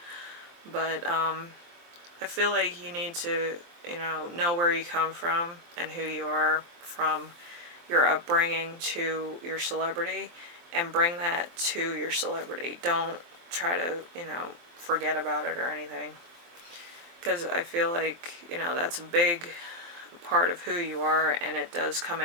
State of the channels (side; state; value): left; late; 23 ms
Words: But I feel like you need to, know where you come from and who you are from your upbringing to your celebrity, and bring that to your celebrity. Don't try to, forget about it or anything. Because I feel like, that's a big part of who you are, and it does come